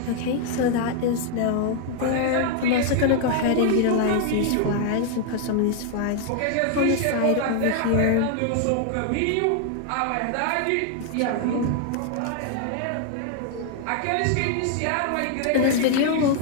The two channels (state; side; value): different; both; correlation 0.00